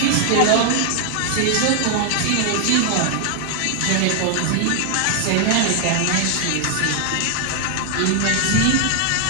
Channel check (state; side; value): different; both; correlation 0.00